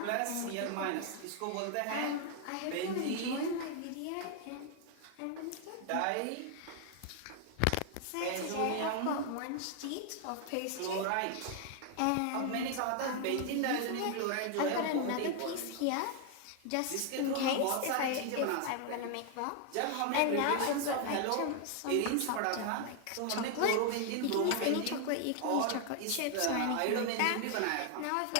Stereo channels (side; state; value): both; different; correlation 0.00